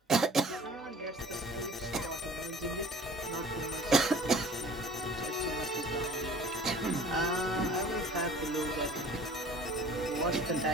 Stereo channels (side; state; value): both; normal; correlation 0.47